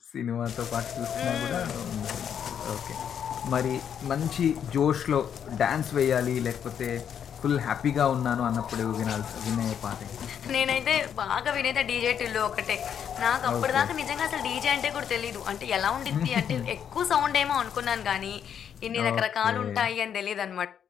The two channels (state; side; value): quieter; right; 8.5 dB